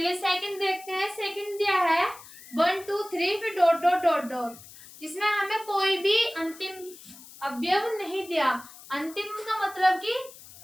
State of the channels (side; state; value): left; noise; hiss, 19 dB below the sound